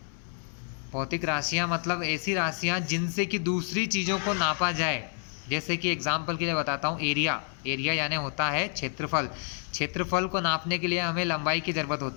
भौतिक राशियाँ मतलब ऐसी राशियाँ जिनसे कि दूसरी चीज़ों को नापा जाए। जैसे कि एग्जाम्पल के लिए बताता हूँ, एरिया यानी होता है क्षेत्रफल। क्षेत्रफल को नापने के लिए हमें लंबाई की ज़रूरत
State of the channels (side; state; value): right; silent; 59 dB below the other